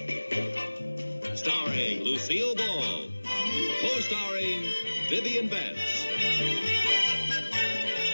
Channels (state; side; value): inverted; both; correlation -1.00